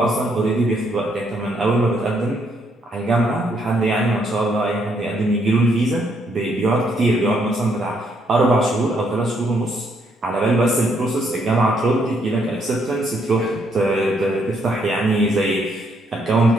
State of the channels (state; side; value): normal; both; correlation 0.72